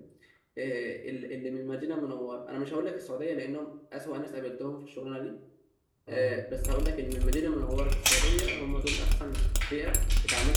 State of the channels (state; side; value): identical; both; correlation 1.00